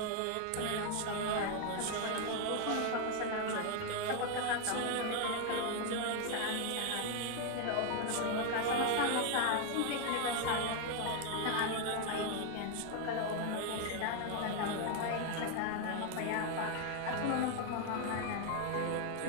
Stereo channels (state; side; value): different; both; correlation 0.01